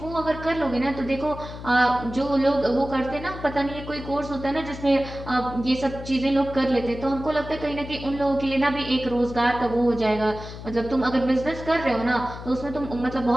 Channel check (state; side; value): noise; left; hum, 11 dB below the sound